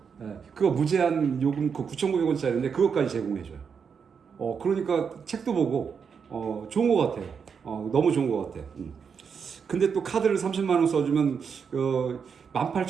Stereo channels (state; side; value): quieter; left; 6.4 dB